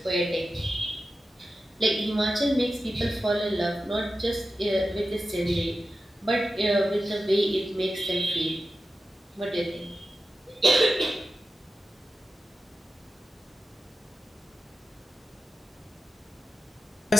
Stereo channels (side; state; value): both; normal; correlation 0.92